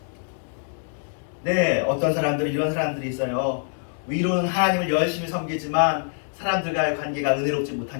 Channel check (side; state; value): right; silent; digital silence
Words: 네, 어떤 사람들은 이런 사람들이 있어요. 위로는 하나님을 열심히 섬기지만 사람들과의 관계가 은혜롭지